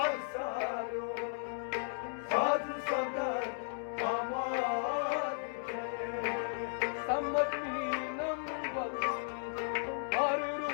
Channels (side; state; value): right; silent; 54 dB below the other